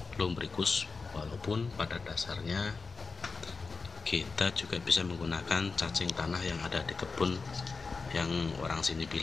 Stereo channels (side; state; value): right; quieter; 4.3 dB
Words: Lumbricus, walaupun pada dasarnya kita juga bisa menggunakan cacing tanah yang ada di kebun, yang orang sini